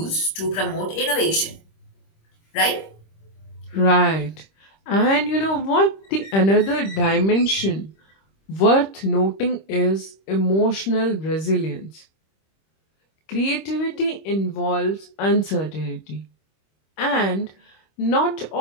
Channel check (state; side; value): late; right; 26 ms